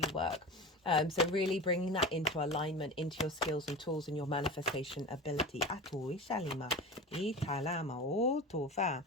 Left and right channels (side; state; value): both; normal; correlation 0.30